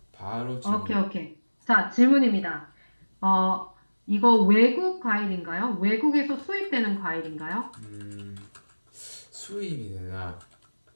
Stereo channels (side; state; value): both; inverted; correlation -1.00